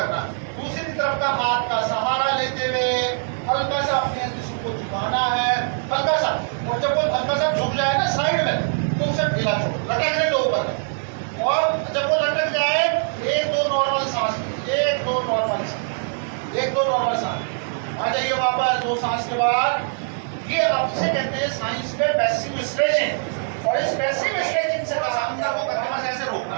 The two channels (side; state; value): left; silent; digital silence